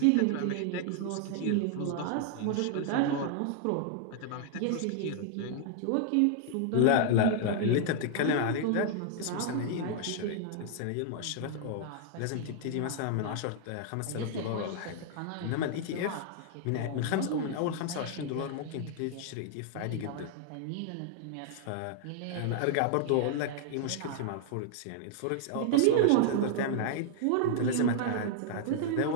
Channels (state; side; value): different; both; correlation 0.00